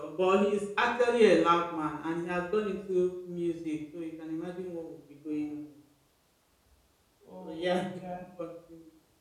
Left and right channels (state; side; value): identical; both; correlation 1.00